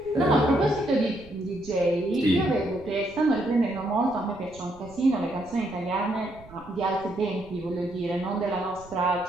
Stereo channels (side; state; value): right; noise; rumble, 21 dB below the sound